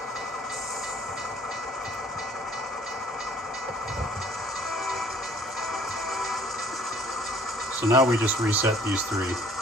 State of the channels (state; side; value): normal; both; correlation 0.56